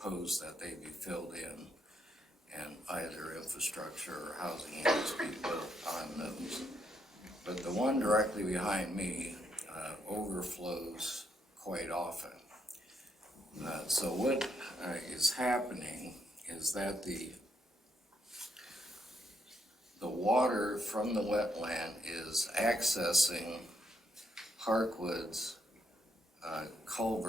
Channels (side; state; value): both; normal; correlation 0.76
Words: that they be filled in. and either infrastructure or housing units be built on those. But the one directly behind me overflows quite often. So what is happening is that the water from the wetland is accessing Parkwood's